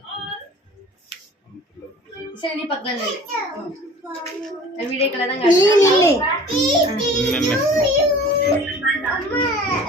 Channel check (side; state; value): both; normal; correlation 0.45